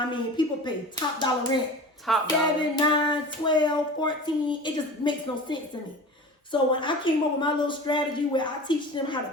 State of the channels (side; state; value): both; normal; correlation 0.36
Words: mean, people pay top dollar rent. Top dollar. 7, 9, 12, 14. It just makes no sense to me. So when I came up with my little strategy where I teach them how to